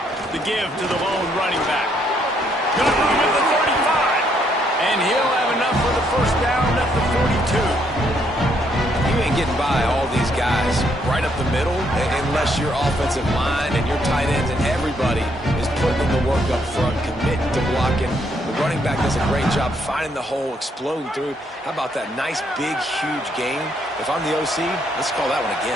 The give to the lone running back. Got room at the 35. And he'll have enough for the 1st down at the 42. You ain't getting by all these guys right up the middle unless your offensive line and your tight ends and everybody is putting in the work up front, committing to blocking. The running back does a great job finding the hole, exploding through. How about that nice, big, huge game? If I'm the OC, let's call that one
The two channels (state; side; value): normal; both; correlation 0.72